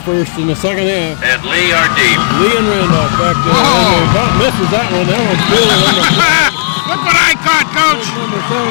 first in the second half. And Lee are deep. Lee and Randolph back there. About misses that one. That one's fielding on the Look what I caught, Coach. number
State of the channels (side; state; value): right; silent; digital silence